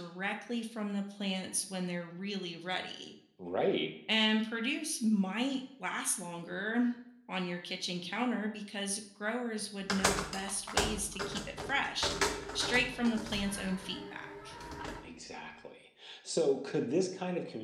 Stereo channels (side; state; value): both; identical; correlation 1.00